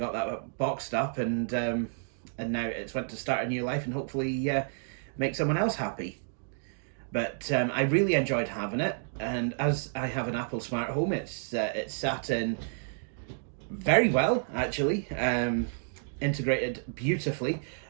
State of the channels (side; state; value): left; silent; digital silence